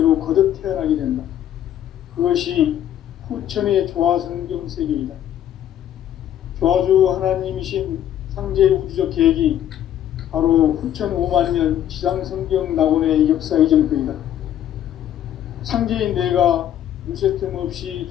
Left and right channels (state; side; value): quieter; right; 11.0 dB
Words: 거듭 태어나게 된다. 그것이 후천의 조화성경 세계이다. 조화주 하나님이신 상제 우주적 계획이 바로 후천 5만년 지상성경 낙원의 역사의 전표이다. 상제인 내가 무쇠 틈 없이